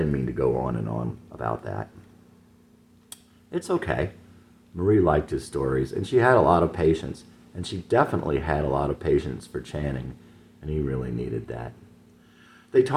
mean to go on and on about that. It's okay. Marie liked his stories, and she had a lot of patience, and she definitely had a lot of patience for Channing, and he really needed that. They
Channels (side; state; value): both; identical; correlation 1.00